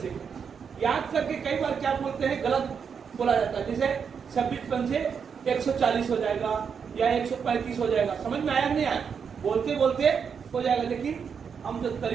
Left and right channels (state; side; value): quieter; left; 6.6 dB